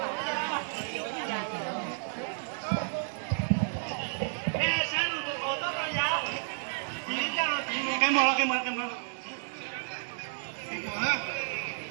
Cái mùa cái mùa cái mùa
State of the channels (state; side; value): silent; left; digital silence